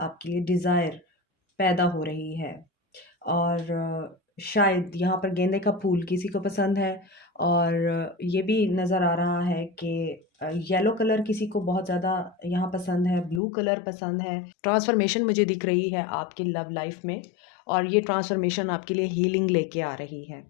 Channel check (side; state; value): right; drops out; at 13.4 s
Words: लिए डिज़ायर पैदा हो रही है। और शायद यहाँ पर गेंदे का फूल किसी को पसंद है। और ये भी नज़र आ रहा है कि येलो कलर किसी को बहुत ज़्यादा यहाँ पसंद है, ब्लू कलर पसंद है। ट्रांसफॉर्मेशन मुझे दिख रही है आपकी लव लाइफ में, और ये ट्रांसफॉर्मेशन आपके लिए हीलिंग लेके आ रही है,